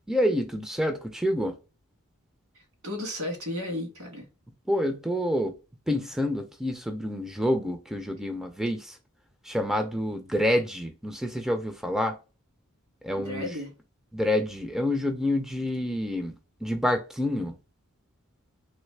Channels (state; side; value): normal; both; correlation 0.79